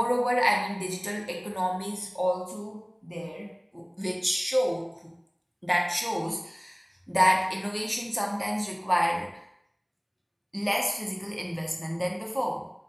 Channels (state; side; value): identical; both; correlation 1.00